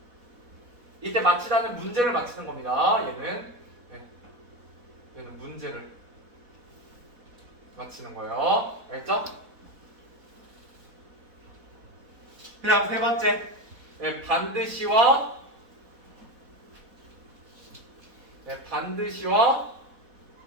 이때 맞추다는 문제를 맞추는 겁니다. 얘는 문제를 맞추는 거예요. 알겠죠? 그 다음 세 번째, 반드시와 왜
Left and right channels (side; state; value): left; late; 4.1 ms